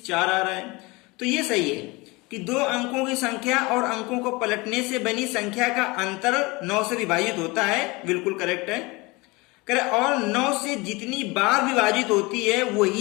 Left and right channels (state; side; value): quieter; right; 24.4 dB